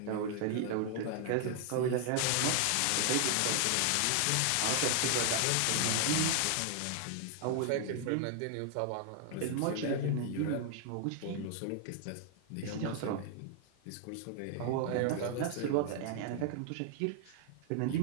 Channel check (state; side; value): different; both; correlation 0.00